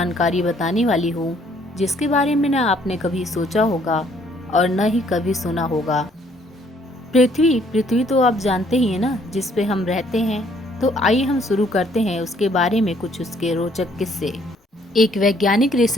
बताने वाली हूँ जिसके बारे में न आपने कभी सोचा होगा और न ही कभी सुना होगा। पृथ्वी तो आप जानते ही हैं ना, जिस पे हम रहते हैं। तो आइए हम शुरू करते हैं उसके बारे में कुछ उसके रोचक किस्से। एक वैज्ञानिक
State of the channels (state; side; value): normal; both; correlation 0.64